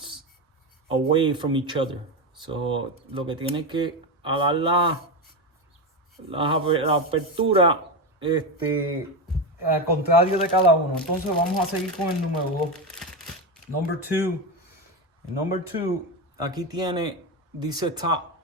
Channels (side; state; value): both; normal; correlation 0.15